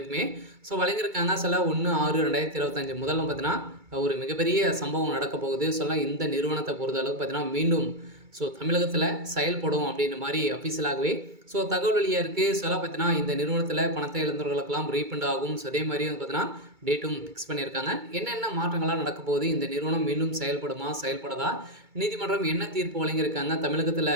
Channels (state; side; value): late; left; 2.2 ms